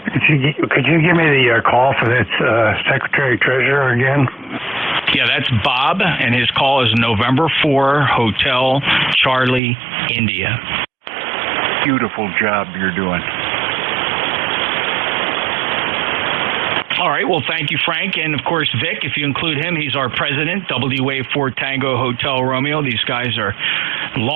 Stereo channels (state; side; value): drops out; left; at 9.6 s